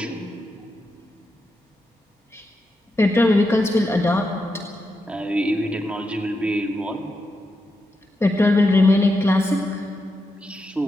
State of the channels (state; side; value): normal; both; correlation 0.86